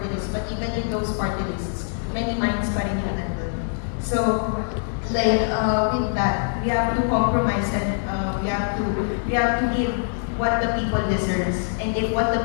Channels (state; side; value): silent; right; 63 dB below the other